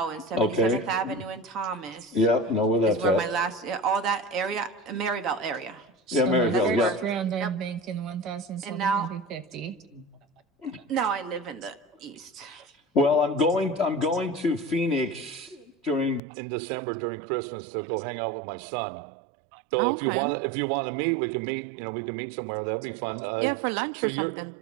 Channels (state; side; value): drops out; left; at 16.2 s